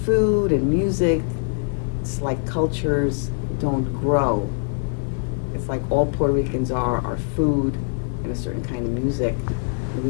and music? It's like cultures don't grow. It's like all Puerto Ricans are food and a certain kind of music, and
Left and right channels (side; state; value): right; silent; 63 dB below the other